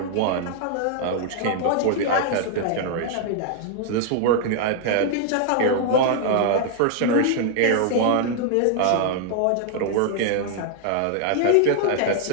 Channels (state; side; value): different; both; correlation 0.00